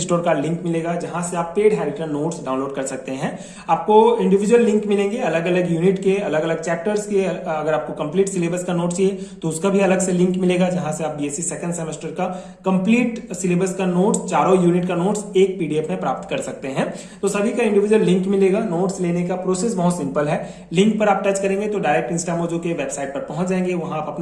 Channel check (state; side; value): identical; both; correlation 1.00